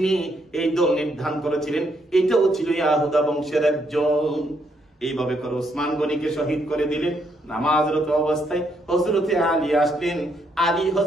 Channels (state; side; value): normal; both; correlation 0.74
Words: এই দল নির্ধারণ করেছিলেন, এটাও ছিল ইয়াহুদা বংশের একজন। এইভাবে করে ওসমান গনিকে শহীদ করে দিলেন। নামাজরত অবস্থায় হযরতে আলী আসলেন।